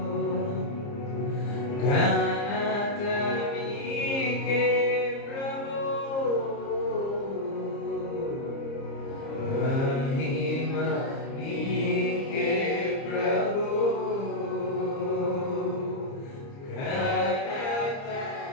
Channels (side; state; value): right; late; 30 ms